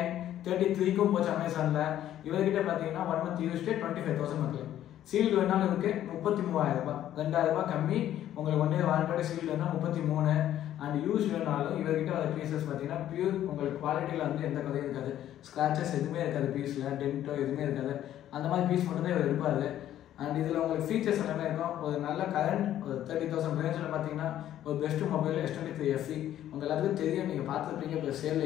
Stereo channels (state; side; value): quieter; right; 11.9 dB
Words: 33க்கும் போச்சு அமேசானில். இவர்கிட்ட பார்த்தீங்கன்னா 1 month யூஸ்டு 25,000 மக்கள். சீல்டு வேணாலும் இருக்குது 33,000, 2,000 ரூபாய் கம்மி. உங்களுக்கு 1 year வாரண்டியோட சீல்டு வேணால் 33. அண்ட் யூஸ் வேணாலும் இவர்கிட்ட வர பீசஸ் பார்த்தீங்கன்னா பியூர் உங்களுக்கு குவாலிட்டியில் வந்து எந்த கதையும் இருக்காது, ஸ்க்ராச்சஸ் எதுவுமே இருக்காது, பீஸில் டென்ட்டோ எதுவுமே இருக்காது. அந்த மாதிரி பீஸ் மட்டும் தான் இவர் இருப்பார். அண்ட் இதில் உங்களுக்கு ஃபீச்சர்ஸ் எல்லாமே இருக்கும். ஒரு நல்ல கரண்ட் ஒரு 30,000 ரேஞ்சில் பார்த்தீங்கன்னா ஒரு பெஸ்ட்டு மொபைல் S23 FE. உங்கள் எல்லாத்துக்கும் தெரியும், நீங்கள் பார்த்துருப்பீங்க இப்போ